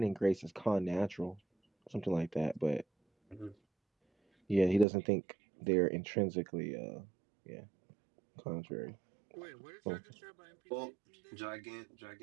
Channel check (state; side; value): drops out; left; at 4.9 s